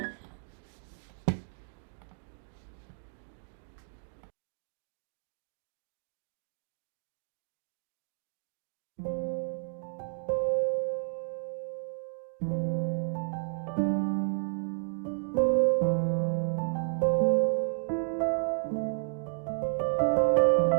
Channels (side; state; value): left; silent; digital silence